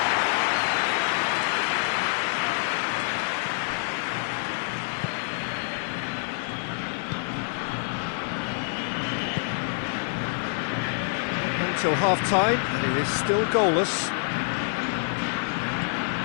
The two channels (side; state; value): right; silent; digital silence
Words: Until half-time, and it is still goalless.